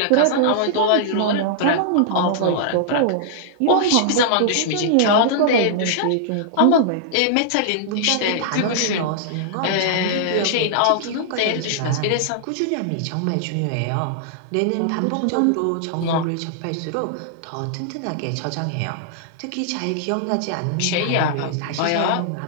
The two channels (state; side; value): different; both; correlation -0.01